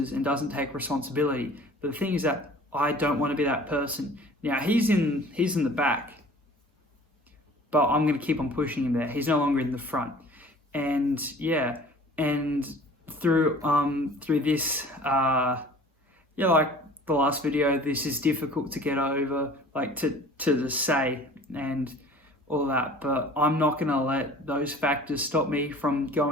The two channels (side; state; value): both; normal; correlation 0.47